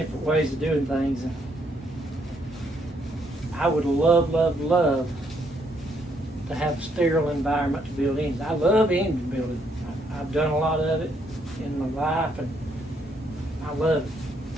ways of doing things. And I would love to have a sterile environment to build engines. I love engine building. I've done a lot of it in my life, and I love it.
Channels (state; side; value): normal; both; correlation 0.72